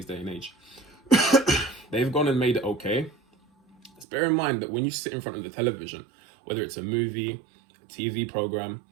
day and age. They've gone and made it okay. Just bear in mind that when you sit in front of the television, whether it's a movie, a TV program,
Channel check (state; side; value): drops out; left; at 4.0 s